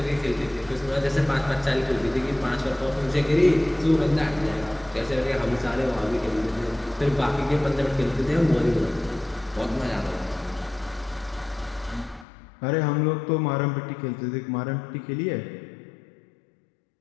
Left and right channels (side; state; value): right; drops out; at 12.2 s